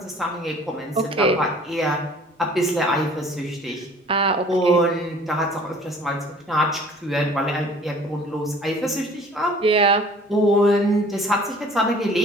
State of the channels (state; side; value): normal; both; correlation 0.51